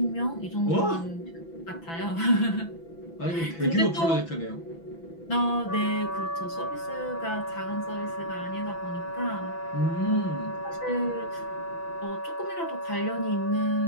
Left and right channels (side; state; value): right; late; 6.0 ms